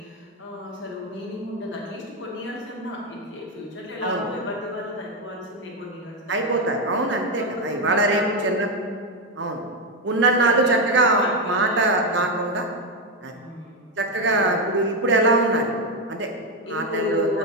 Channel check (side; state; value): both; normal; correlation 0.07